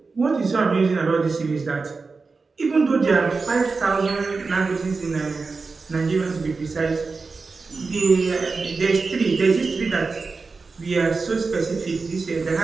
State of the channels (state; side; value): quieter; left; 4.3 dB